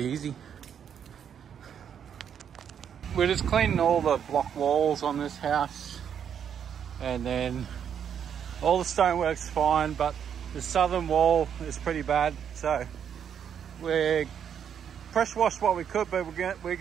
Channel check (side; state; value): left; quieter; 8.3 dB